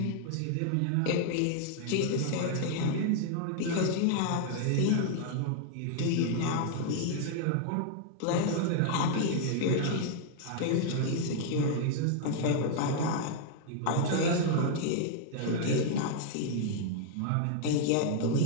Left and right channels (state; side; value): different; both; correlation 0.00